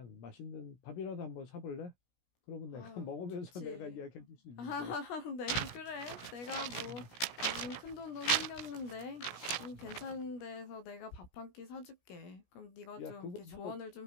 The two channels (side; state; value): right; late; 17 ms